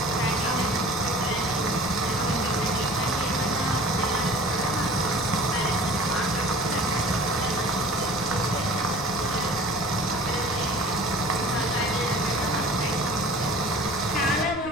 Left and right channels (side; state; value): left; noise; rumble, 15 dB below the sound